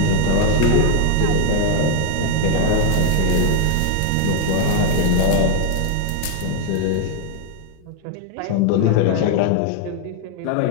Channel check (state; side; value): different; both; correlation 0.00